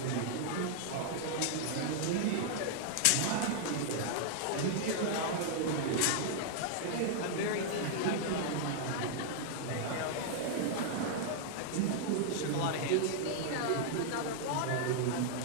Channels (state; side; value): different; both; correlation -0.01